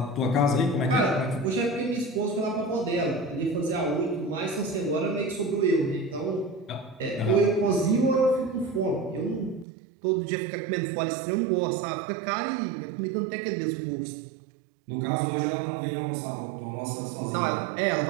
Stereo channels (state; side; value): drops out; left; at 9.7 s